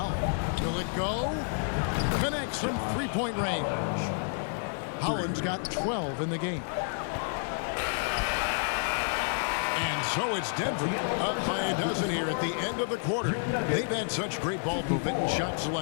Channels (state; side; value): silent; right; digital silence